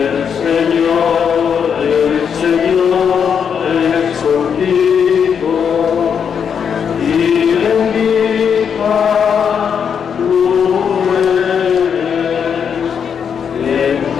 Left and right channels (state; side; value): quieter; right; 7.2 dB